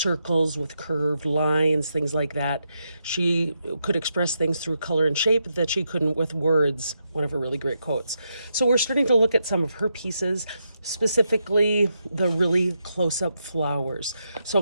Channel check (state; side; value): inverted; both; correlation -0.83